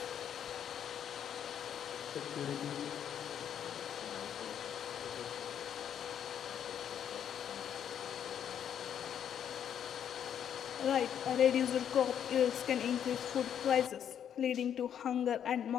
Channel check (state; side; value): quieter; right; 9.1 dB